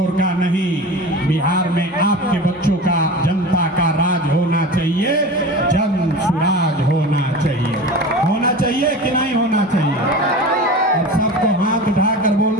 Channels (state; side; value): normal; both; correlation 0.33